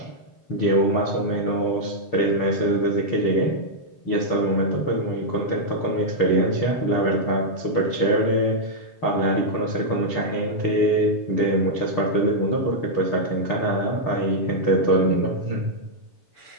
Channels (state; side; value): late; right; 6.7 ms